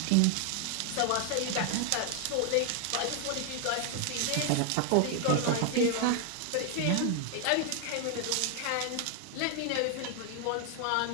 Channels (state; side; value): different; both; correlation 0.00